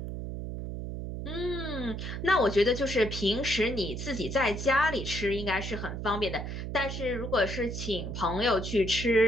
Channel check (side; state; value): right; noise; hum, 6 dB below the sound